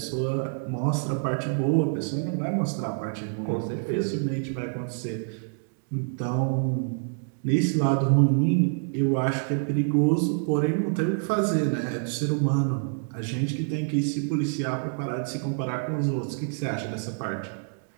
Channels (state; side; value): silent; left; digital silence